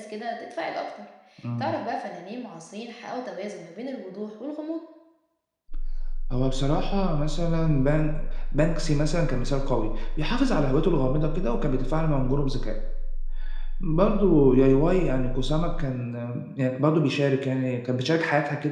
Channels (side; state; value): both; identical; correlation 1.00